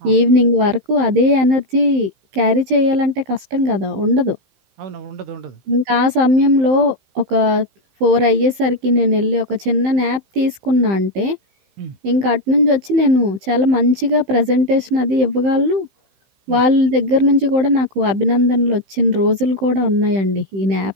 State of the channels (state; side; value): late; left; 15 ms